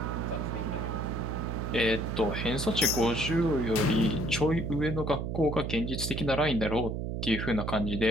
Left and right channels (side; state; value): right; noise; hum, 3 dB below the sound